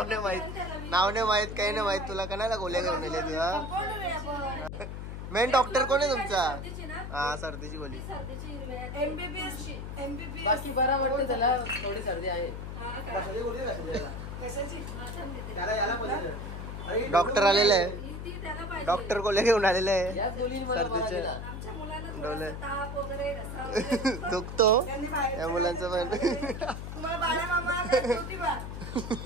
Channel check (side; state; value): left; noise; hum, 7 dB below the sound